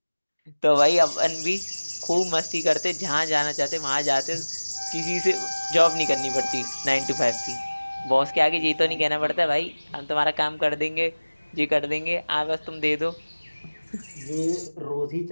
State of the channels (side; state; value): both; inverted; correlation -1.00